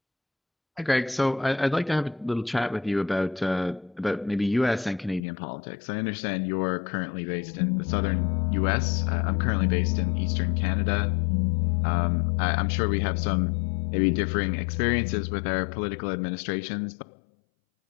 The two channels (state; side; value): drops out; right; at 5.2 s